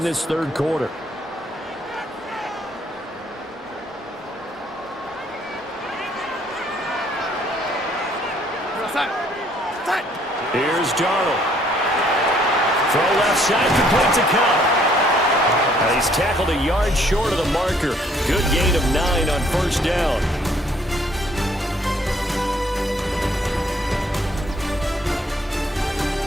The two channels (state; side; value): normal; both; correlation 0.64